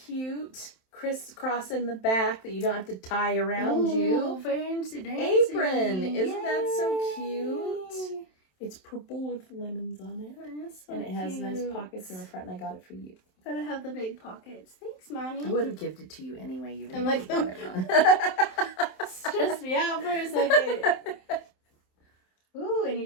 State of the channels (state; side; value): late; right; 27 ms